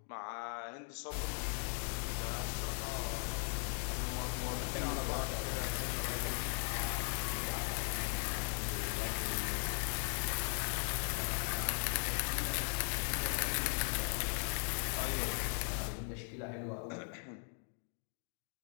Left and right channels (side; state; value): right; silent; 52 dB below the other